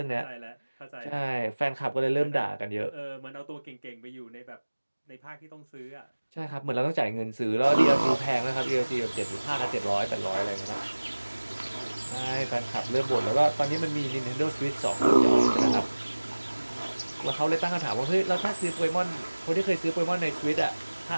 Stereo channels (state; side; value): inverted; both; correlation -1.00